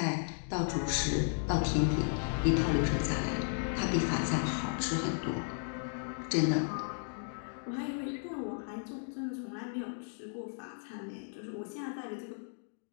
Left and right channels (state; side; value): silent; right; digital silence